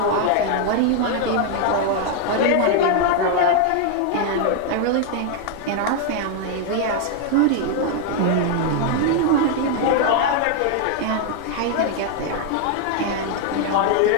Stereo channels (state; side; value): different; both; correlation 0.00